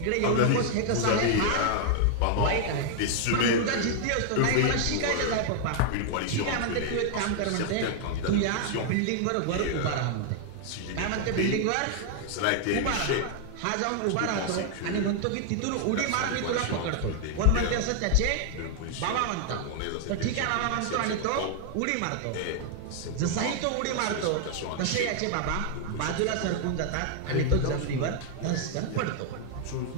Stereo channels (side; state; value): both; different; correlation 0.00